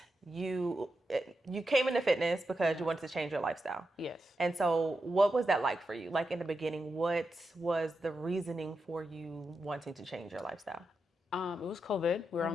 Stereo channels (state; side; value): normal; both; correlation 0.88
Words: you came into fitness because you wanted to change your lifestyle. Yes. And so what was that like for you? Like in the beginning, what was the reasoning for you wanting to change your lifestyle? It was COVID. We were